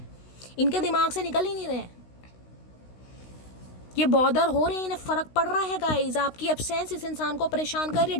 इनके दिमाग से निकल ही नहीं रहे हैं। ये बॉदर हो रहे हैं, इन्हें फ़र्क पड़ रहा है गाइस। आपकी एब्सेंस इस इंसान को परेशान कर रही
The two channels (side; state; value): right; late; 16 ms